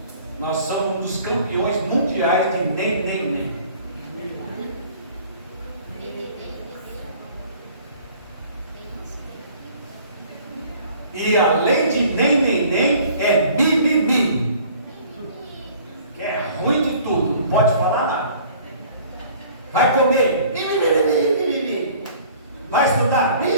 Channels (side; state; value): both; inverted; correlation -0.52